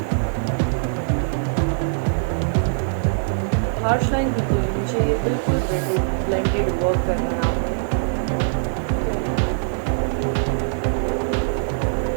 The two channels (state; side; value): silent; left; digital silence